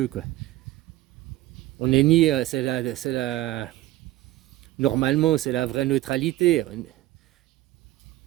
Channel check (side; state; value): left; quieter; 16.2 dB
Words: quoi. On est ni, c'est la Normalement, c'est la vraie neutralité,